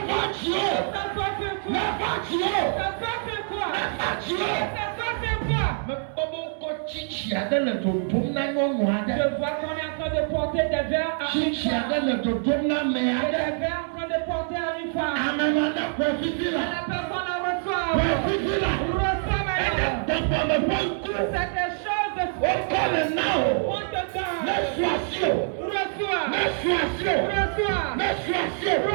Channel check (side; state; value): left; silent; 61 dB below the other